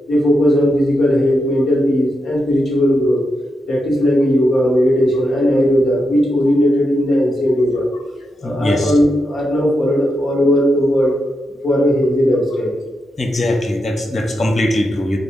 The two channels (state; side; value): normal; both; correlation 0.85